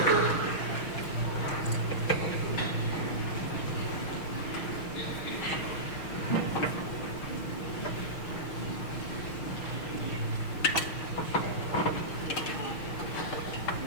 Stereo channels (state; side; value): late; right; 6.3 ms